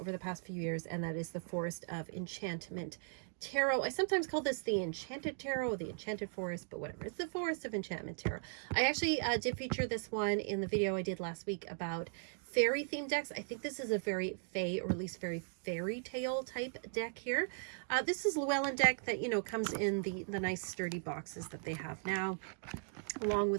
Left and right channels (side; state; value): left; silent; digital silence